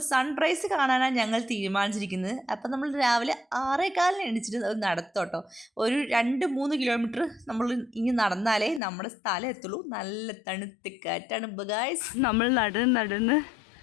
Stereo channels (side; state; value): right; drops out; at 8.8 s